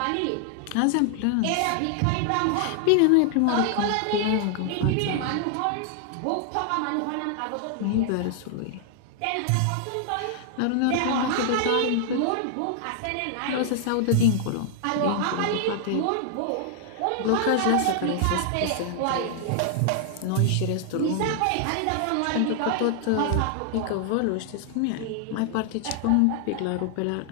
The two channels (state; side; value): different; both; correlation 0.00